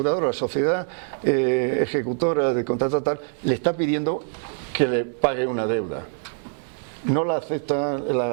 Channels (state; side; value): silent; left; 63 dB below the other